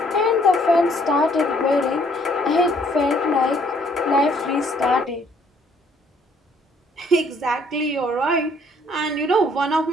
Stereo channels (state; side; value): normal; both; correlation 0.63